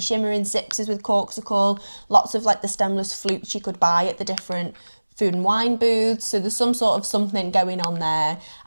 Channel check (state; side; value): inverted; both; correlation -1.00